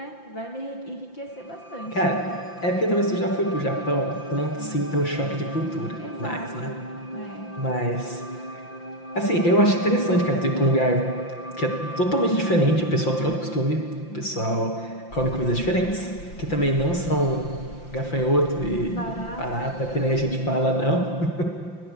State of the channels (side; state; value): right; late; 5.8 ms